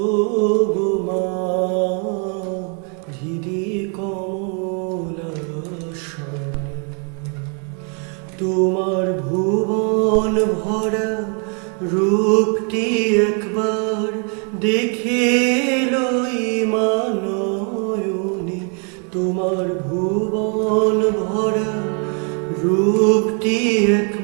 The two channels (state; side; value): quieter; left; 39.4 dB